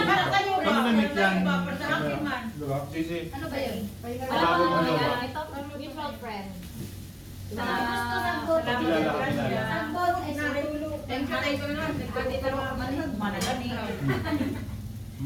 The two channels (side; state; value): both; identical; correlation 1.00